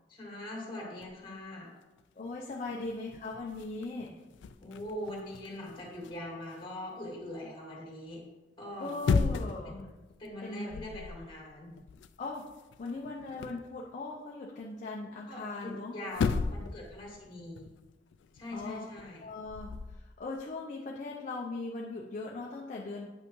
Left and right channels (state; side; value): quieter; right; 3.4 dB